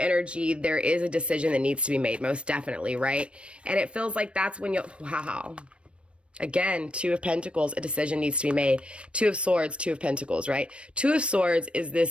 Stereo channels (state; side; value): late; left; 0.059 ms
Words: there is a decision that needs to be made, most definitely, right? And it feels like that's when wow. Again, Two of Pentacles, a decision needs to be made. Two of Swords, Two of Pentacles, right? Two of Swords is